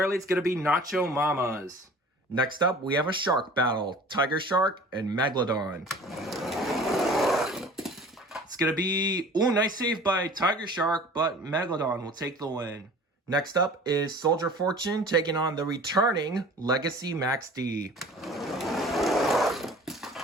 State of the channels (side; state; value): both; normal; correlation 0.44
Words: it's going to be Nacho Mamas. Next up, we have a shark battle. Tiger Shark and Megalodon. It's going to be, oh, nice save by Tiger Shark, but Megalodon will take the win. Next up is Soldier Fortune taking on the returning Legacy Max D.